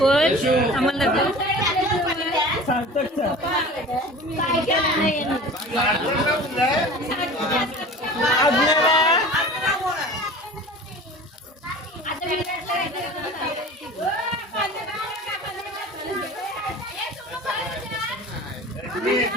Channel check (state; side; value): normal; both; correlation 0.39